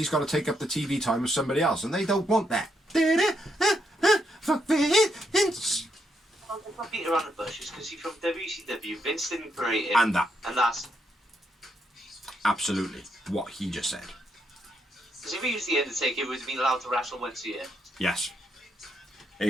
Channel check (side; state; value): both; normal; correlation 0.79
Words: got to take up the TV time of somebody else, and they don't want that. Fuck Vince. If I beat around the bushes, because he's from WCW, Vince didn't create him. And that. And that's... Absolutely. What he just said. Because if he was the Undertaker, he would have been allowed to wrestle once a year. Yes.